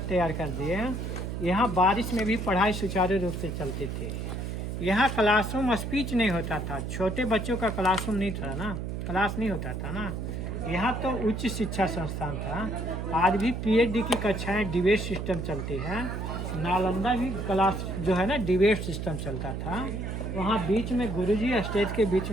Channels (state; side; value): noise; right; hum, 4 dB below the sound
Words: तैयार कर दिए, यहाँ बारिश में भी पढ़ाई सुचारू रूप से चलती थी। यहाँ क्लासरूम स्पीच नहीं होता था, छोटे बच्चों का क्लासरूम नहीं था ना, क्लास नहीं होता था ना। यहाँ तो उच्च शिक्षा संस्थान था। आज भी पीएचडी की कक्षाएं डिबेट सिस्टम चलती है। नालंदा भी क्लास जो है ना डिबेट सिस्टम चलता था। वहाँ बीच में गुरुजी, स्टेज के बीच